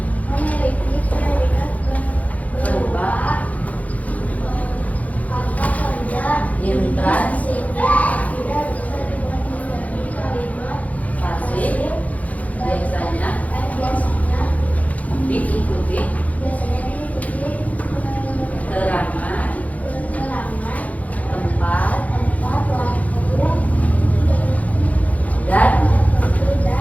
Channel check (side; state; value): right; late; 0.071 ms